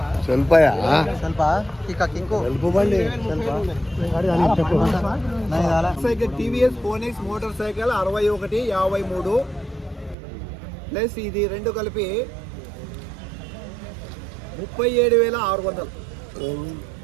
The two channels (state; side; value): drops out; left; at 10.2 s